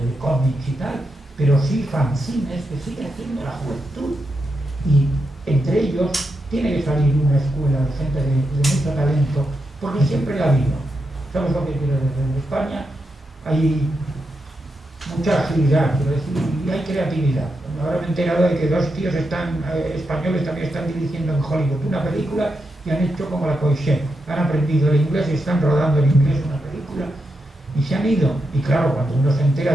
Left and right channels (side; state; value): both; normal; correlation 0.85